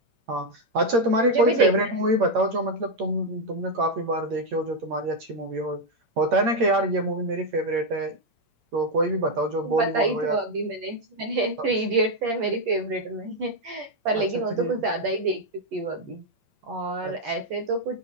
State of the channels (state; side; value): late; left; 8.7 ms